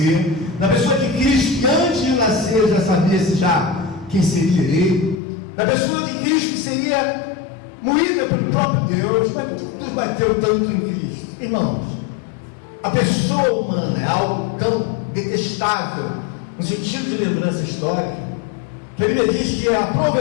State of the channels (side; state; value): right; drops out; at 5.2 s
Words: na pessoa de Cristo que antes de nascer já sabia quem seria ele, na pessoa de Cristo que seria moída pelo próprio Deus. Mas por que Deus bateu tanto em Cristo? Irmãos, a pessoa humana é algo tão detestável, no sentido de lembrança histórica, que a Bíblia diz que aprove